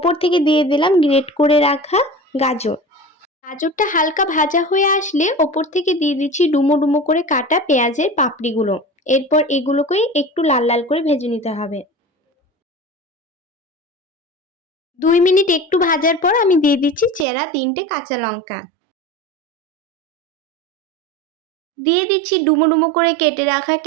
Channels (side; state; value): left; drops out; at 17.2 s